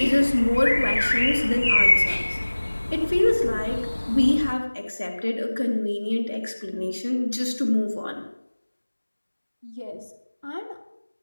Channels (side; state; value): both; inverted; correlation -1.00